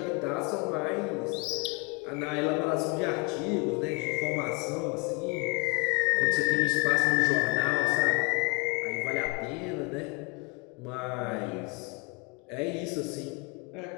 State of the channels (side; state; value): right; quieter; 29.9 dB